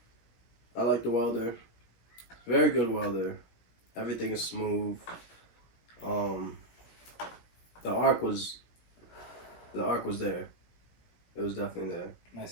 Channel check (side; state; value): right; late; 17 ms